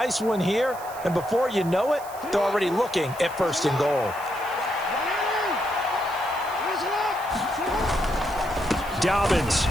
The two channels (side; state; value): right; noise; hiss, 18 dB below the sound